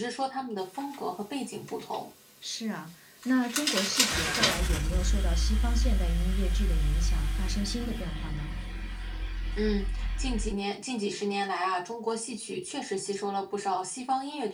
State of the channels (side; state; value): both; identical; correlation 1.00